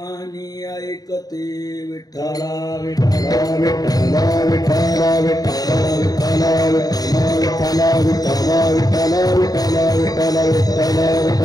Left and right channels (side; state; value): right; late; 0.18 ms